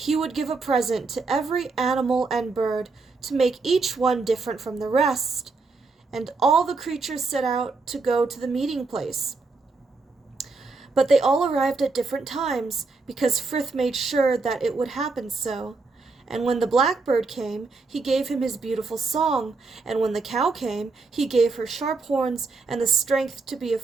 would give a present to every animal and bird, to make each one different from the rest. And all the creatures set out to go to the meeting place. But they all arrived at different times, because Frith made sure that it would happen so. And when the blackbird came, he gave him his beautiful song, and when the cow came, he gave her sharp horns and the strength to be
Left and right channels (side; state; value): left; quieter; 4.0 dB